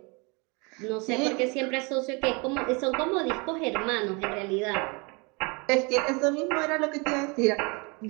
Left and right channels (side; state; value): left; quieter; 29.6 dB